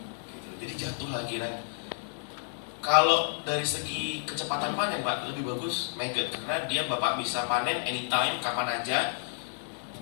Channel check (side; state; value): right; silent; digital silence